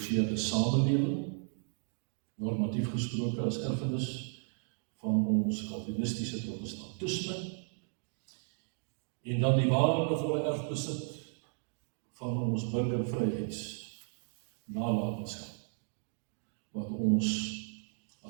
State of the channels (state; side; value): silent; left; 55 dB below the other